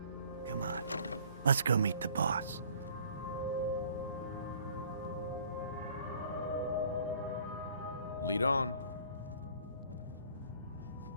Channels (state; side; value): inverted; both; correlation -0.54